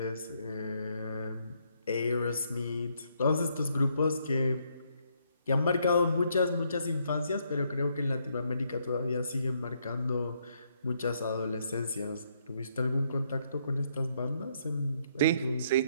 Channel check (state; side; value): inverted; both; correlation -0.73